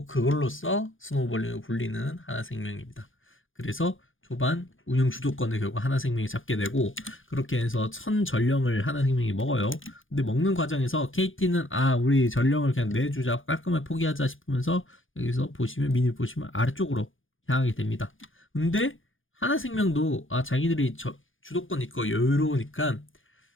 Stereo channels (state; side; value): late; right; 0.58 ms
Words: 그걸로써 스노우볼링을 굴리는 하나생명입니다. 그래서 초반 운영 주도권을 결국 하나생명이 잡게 되고, 그렇게 해서 선 전령을 하나생명이 먹어요. 근데 먹는 과정에서 KT는 우리 전령을 그냥 내주자, 깔끔하게 포기하자 싶으면서 여기서 보시면 미니 보시면 아래쪽으로 향하게 됩니다. 근데 하나생명도 자기들이 주도권 있고 여유로우니까